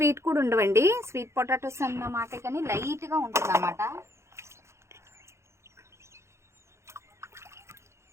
కూడా ఉండవండి, స్వీట్ పొటాటోస్ అన్నమాట, కానీ లైట్గా ఉంటుంది అన్నమాట.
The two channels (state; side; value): late; left; 0.13 ms